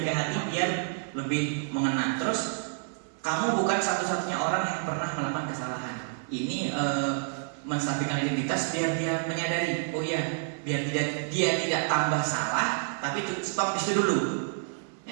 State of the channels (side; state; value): left; silent; 59 dB below the other